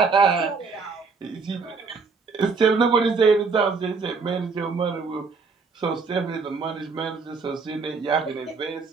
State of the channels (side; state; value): left; quieter; 4.7 dB